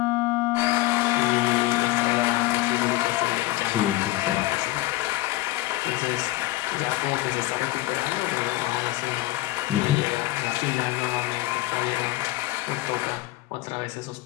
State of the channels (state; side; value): quieter; right; 18.0 dB